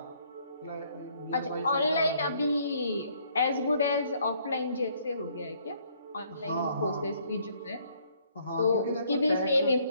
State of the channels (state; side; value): inverted; both; correlation -0.64